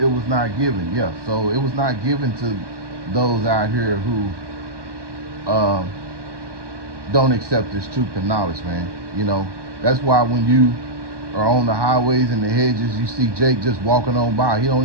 it was not given. Yeah, so it was not given to those out here who don't accept this truth and knowledge, man. That's why when you are on the highways and the hedges, you see Jake just walking on by. He don't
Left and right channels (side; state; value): left; late; 1.2 ms